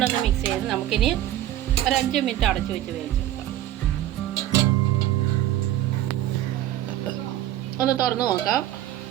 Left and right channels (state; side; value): quieter; left; 13.4 dB